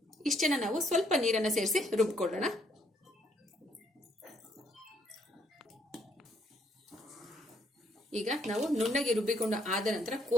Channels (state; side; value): normal; both; correlation 0.69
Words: ಇಷ್ಟನ್ನ ನಾವು ಸ್ವಲ್ಪ ನೀರನ್ನ ಸೇರಿಸಿ ರುಬ್ಕೊಳ್ಳೋಣ. ಈಗ ನಾವು ನುಣ್ಣಗೆ ರುಬ್ಬಿಕೊಂಡು ಆದ ನಂತರ